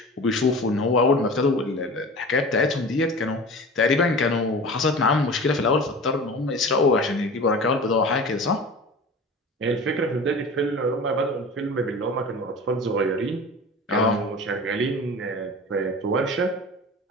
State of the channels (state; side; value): normal; both; correlation 0.36